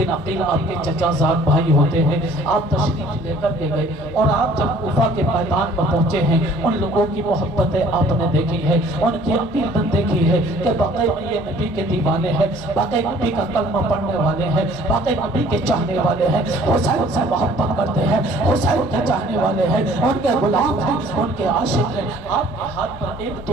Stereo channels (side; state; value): both; normal; correlation 0.54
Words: عقیل آپ کے چچا زاد بھائی ہوتے ہیں، آپ تشریف لے کر کے گئے اور آپ جب کوفہ کے میدان پر پہنچے ہیں، ان لوگوں کی محبتیں آپ نے دیکھی ہے، ان کی عقیدت دیکھی ہے کہ باقی یہ نبی کے دیوانے ہیں، باقی نبی کا کلمہ پڑھنے والے ہیں، باقی نبی کے چاہنے والے ہیں، حسین سے محبت کرتے ہیں، حسین کے چاہنے والے ہیں، ان کے غلام ہیں، ان کے عاشق ہیں۔ آپ کے ہاتھ پر ایک